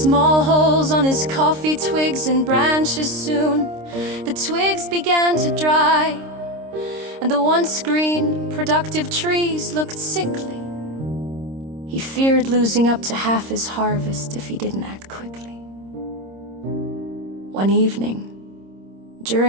small holes on his coffee twigs and branches. Soon, the twigs began to dry, and the once green, productive trees looked sickly. He feared losing up to half his harvest if he didn't act quickly. One evening,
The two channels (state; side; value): late; left; 26 ms